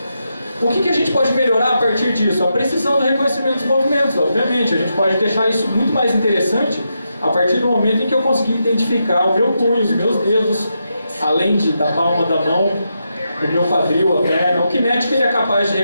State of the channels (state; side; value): inverted; both; correlation -0.85